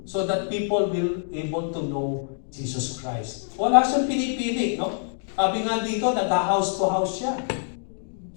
so that people will able to know Jesus Christ. Wala siyang pinipili, no? Sabi nga dito, nag-house to house siya.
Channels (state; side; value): silent; right; digital silence